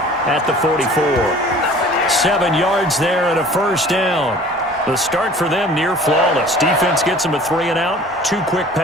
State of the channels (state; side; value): normal; both; correlation 0.47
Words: at the 44. 7 yards there and a first down. The start for them near flawless. Defense gets them a 3 and out. 2 quick